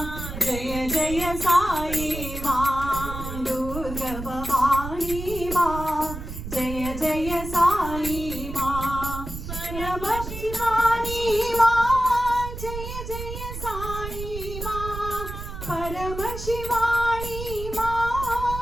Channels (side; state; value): right; noise; rumble, 8 dB below the sound